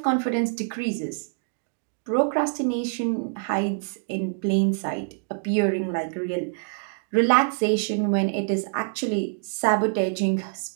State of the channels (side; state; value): left; silent; digital silence